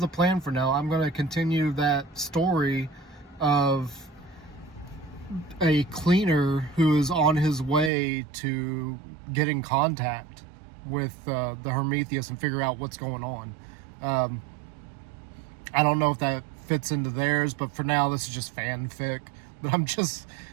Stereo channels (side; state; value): left; drops out; at 7.9 s